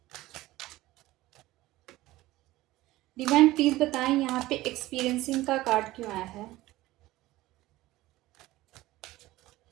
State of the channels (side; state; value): left; quieter; 17.4 dB